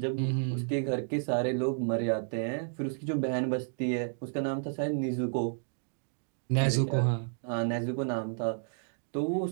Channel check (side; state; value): left; silent; digital silence